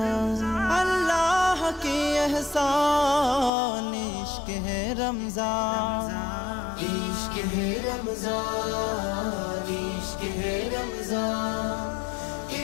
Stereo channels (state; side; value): drops out; right; at 3.5 s